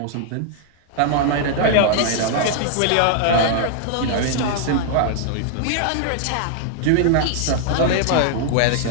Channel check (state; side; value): different; both; correlation -0.01